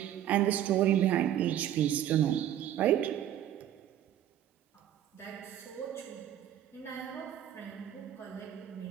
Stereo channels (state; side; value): quieter; left; 11.3 dB